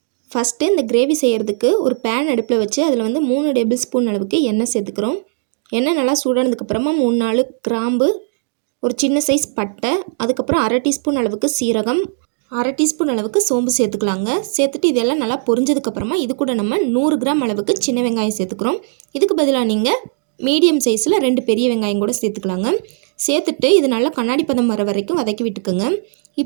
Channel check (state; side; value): silent; left; digital silence